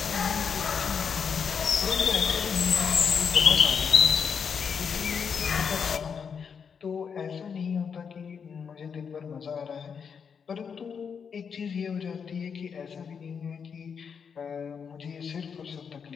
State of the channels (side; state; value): right; quieter; 6.6 dB